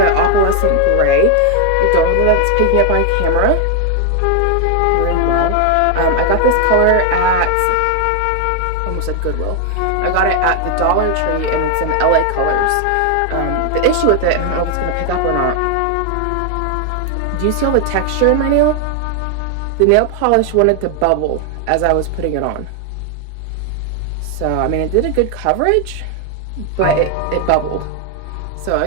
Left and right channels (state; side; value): different; both; correlation 0.00